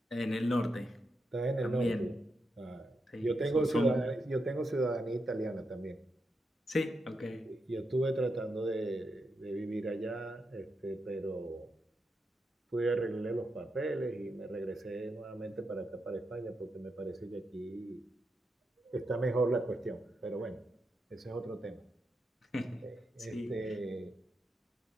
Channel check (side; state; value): both; normal; correlation 0.85